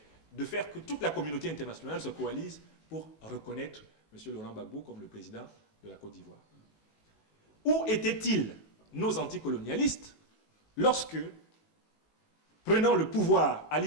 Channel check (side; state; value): right; late; 19 ms